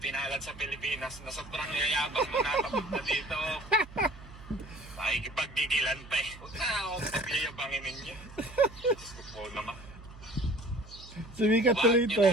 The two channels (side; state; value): right; noise; hum, 18 dB below the sound